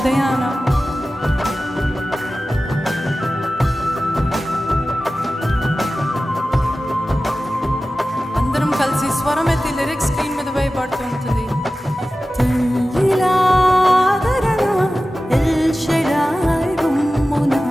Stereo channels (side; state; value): both; normal; correlation 0.95